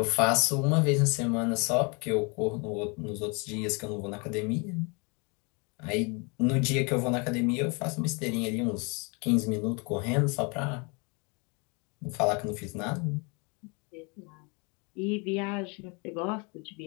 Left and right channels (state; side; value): quieter; right; 31.8 dB